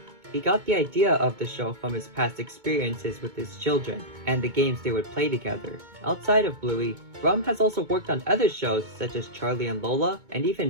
he got the idea of the show from his past experiences with his children and the games they would play together. Outside of Bluey, Brumm has also worked on other shows such as Charlie and Lola and even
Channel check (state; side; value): late; left; 2.2 ms